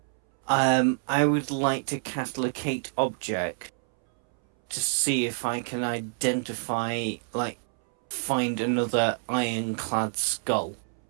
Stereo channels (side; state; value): left; silent; 60 dB below the other